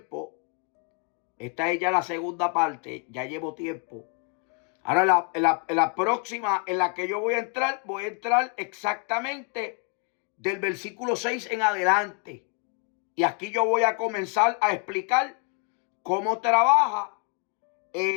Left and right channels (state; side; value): quieter; right; 37.1 dB